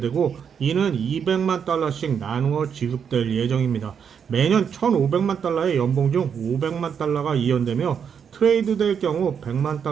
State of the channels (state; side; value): quieter; left; 7.3 dB